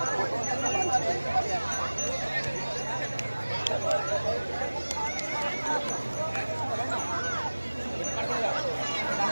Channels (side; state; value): both; inverted; correlation -1.00